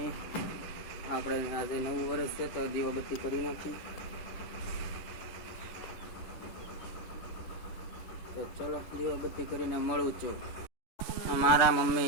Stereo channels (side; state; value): right; late; 10 ms